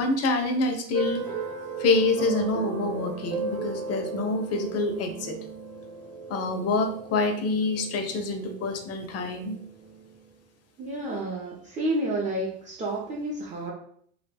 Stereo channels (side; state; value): both; normal; correlation 0.05